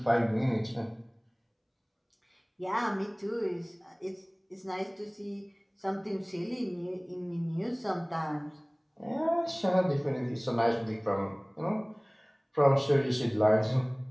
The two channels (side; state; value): both; identical; correlation 1.00